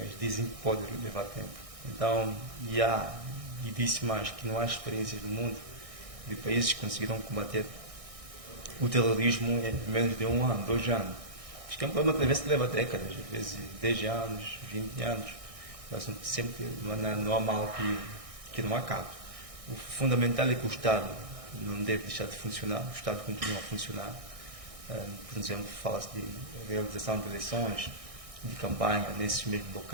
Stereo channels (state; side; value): late; left; 1.6 ms